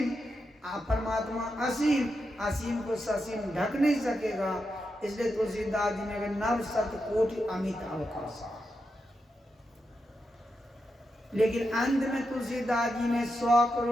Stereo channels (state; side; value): normal; both; correlation 0.86